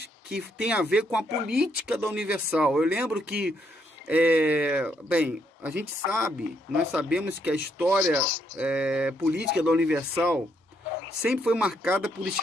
que tem a ver com a política da Universal. Eu lembro que, a gente sabe, nós sabemos que a história política da Universal sempre foi marcada por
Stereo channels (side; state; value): both; normal; correlation 0.74